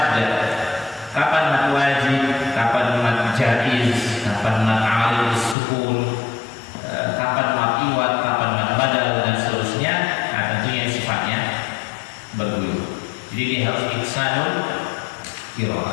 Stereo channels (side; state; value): right; drops out; at 5.6 s